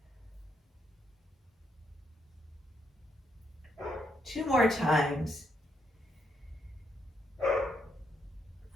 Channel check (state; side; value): normal; both; correlation 0.77